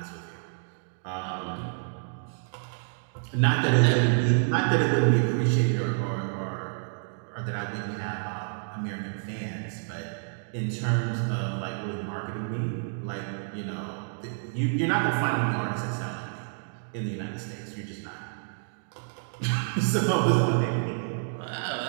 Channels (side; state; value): left; silent; digital silence